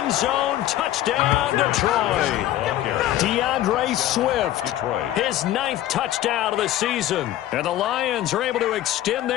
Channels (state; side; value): quieter; right; 13.5 dB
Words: end zone. Touchdown, Detroit. DeAndre Swift, his 9th touchdown of the season. And the Lions are able to extend